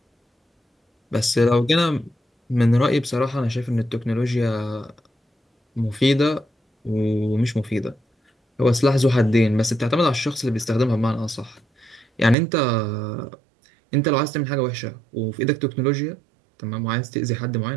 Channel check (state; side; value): drops out; left; at 12.4 s